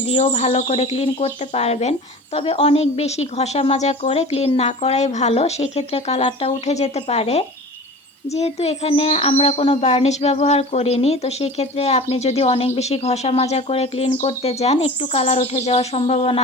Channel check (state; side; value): normal; both; correlation 0.37